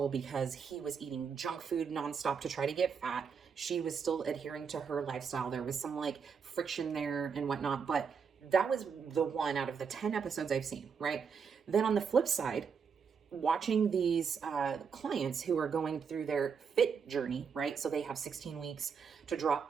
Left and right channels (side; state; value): left; quieter; 6.2 dB